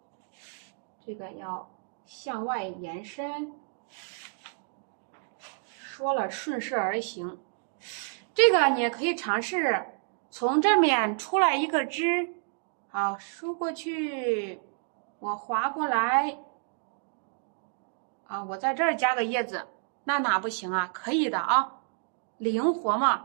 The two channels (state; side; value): silent; left; 58 dB below the other